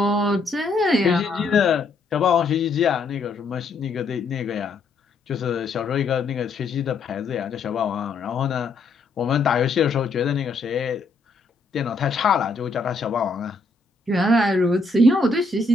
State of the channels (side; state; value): right; quieter; 3.7 dB